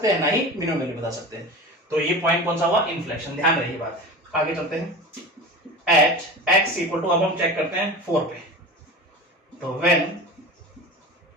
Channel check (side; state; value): both; normal; correlation 0.32